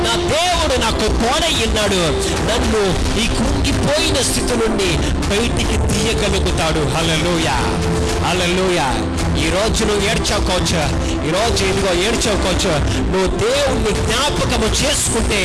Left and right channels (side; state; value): both; identical; correlation 1.00